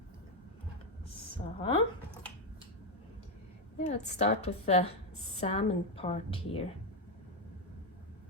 So yeah, let's start with the salmon part here.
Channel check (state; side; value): normal; both; correlation 0.05